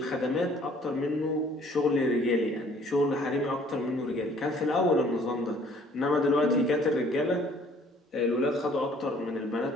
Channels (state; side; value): normal; both; correlation 0.57